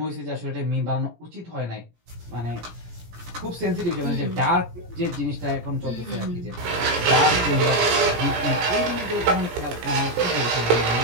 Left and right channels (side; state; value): left; late; 17 ms